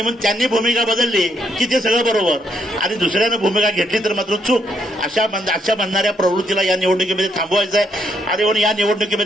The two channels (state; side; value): normal; both; correlation 0.74